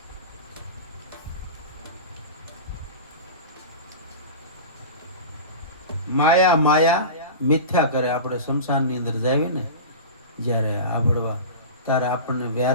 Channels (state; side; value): inverted; both; correlation -0.30